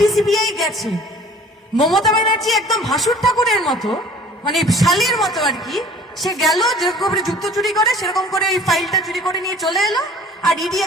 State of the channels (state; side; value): normal; both; correlation 0.49